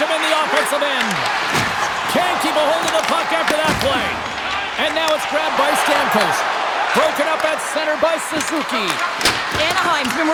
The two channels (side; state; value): both; identical; correlation 1.00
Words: in the offensive end. Can't keep a hold of the puck after that play. And now it's grabbed by Stamkos. Broken up at center by Suzuki. Anaheim's been